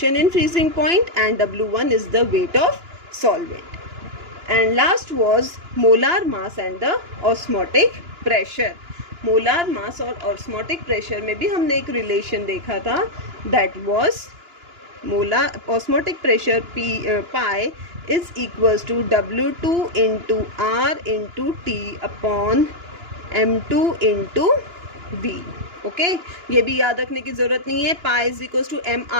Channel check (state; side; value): late; left; 2.9 ms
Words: in freezing point, and W1 is the weight of solvent. And last was molar mass and the osmotic pressure. molar mass और osmotic pressure में भी हमने एक relation देखा था, that was molar osmotic pressure pi is equals to W2 into R into T upon M2 into V। Okay, ये भी याद रखने की जरूरत नहीं है। Pi is equals to